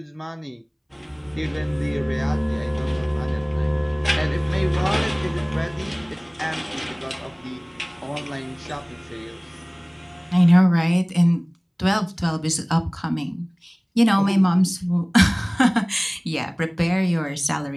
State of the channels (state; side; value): identical; both; correlation 1.00